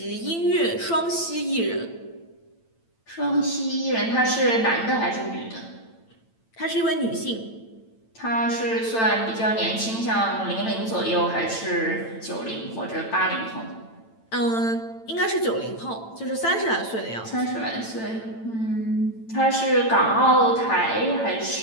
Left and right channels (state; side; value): late; right; 8.9 ms